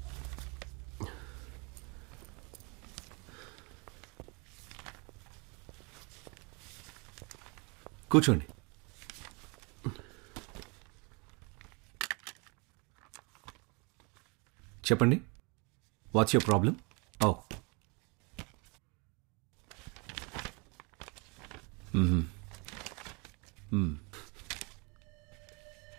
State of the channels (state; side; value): quieter; left; 30.7 dB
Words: కూర్చోండి. చెప్పండి, what's your problem? Oh,